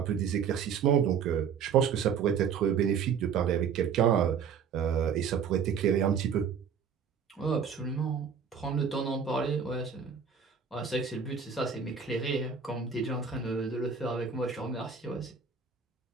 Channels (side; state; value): left; quieter; 6.8 dB